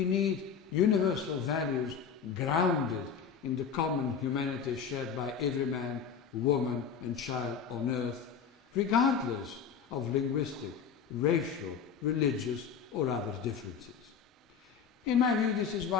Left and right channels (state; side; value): quieter; right; 6.8 dB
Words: need universal values grounded in the common humanity shared by every man, woman and child on earth, regardless of linguistic, racial, religious or other differences. In my view, this is